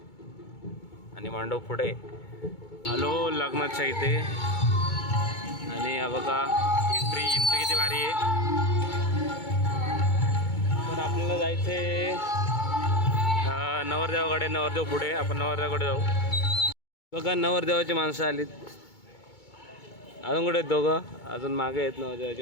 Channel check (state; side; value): late; right; 2.2 ms